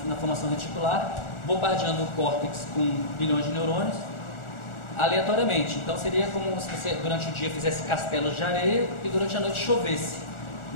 formação reticular, bombardeando o córtex com bilhões de neurônios, aleatoriamente. Então seria como se você durante o dia fizesse castelos de areia e durante a noite chovesse,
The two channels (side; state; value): right; late; 1.4 ms